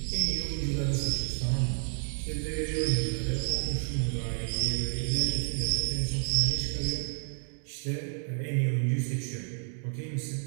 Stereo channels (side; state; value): left; silent; 57 dB below the other